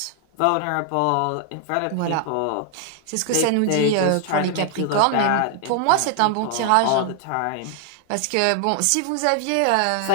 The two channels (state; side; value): different; both; correlation 0.00